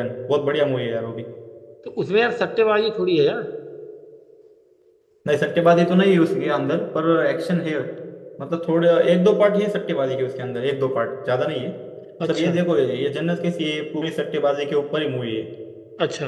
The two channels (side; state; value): both; identical; correlation 1.00